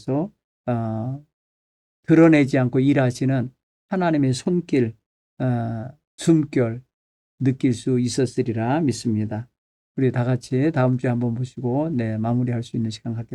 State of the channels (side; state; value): both; identical; correlation 1.00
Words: 드러내지 않고 일하시는 하나님의 손길, 숨결 느낄 수 있었으리라 믿습니다. 우리 다 같이 다음 주에 한번 보시고 마무리할 수 있는 시간